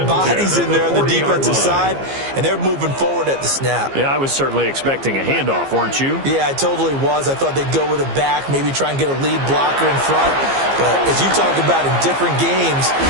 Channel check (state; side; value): late; left; 15 ms